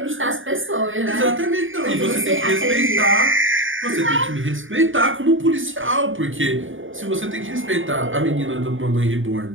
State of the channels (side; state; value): left; late; 0.57 ms